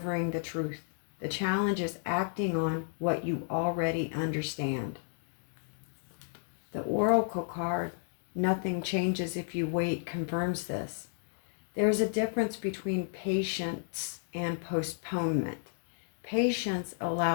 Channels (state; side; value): silent; right; digital silence